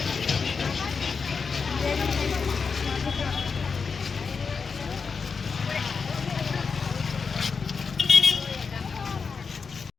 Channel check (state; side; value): quieter; right; 5.3 dB